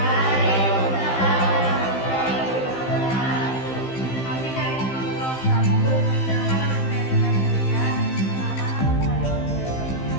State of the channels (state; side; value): late; right; 15 ms